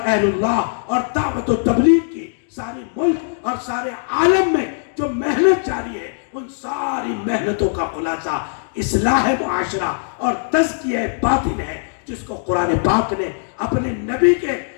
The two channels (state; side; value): silent; right; digital silence